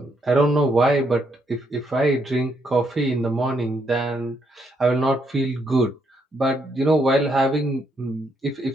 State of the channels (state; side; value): normal; both; correlation 0.75